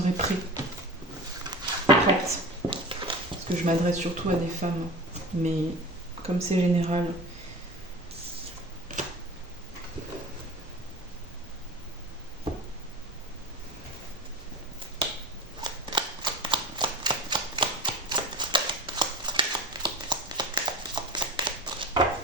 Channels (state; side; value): normal; both; correlation 0.32